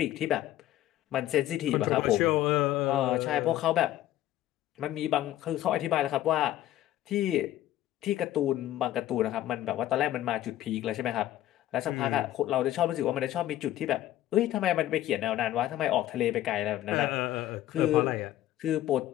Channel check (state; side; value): quieter; right; 13.5 dB